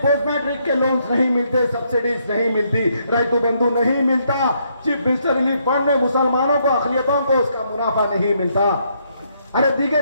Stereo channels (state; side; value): inverted; both; correlation -0.73